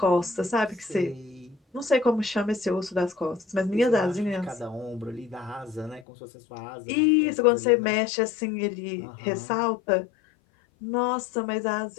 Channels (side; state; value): right; drops out; at 6.1 s